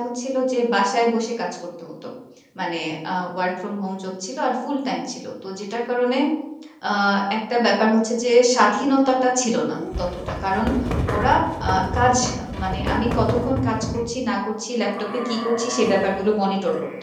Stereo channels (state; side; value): identical; both; correlation 1.00